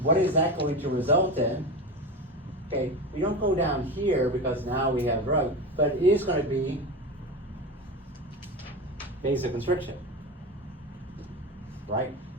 what is that going to result in? Okay, we don't go down here because now we have drug, but it is going to be vasoconstriction, right?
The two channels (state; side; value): normal; both; correlation 0.24